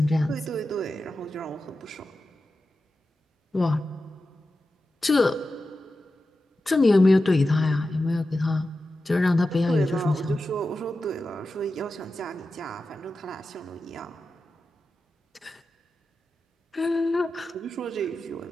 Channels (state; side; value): normal; both; correlation 0.92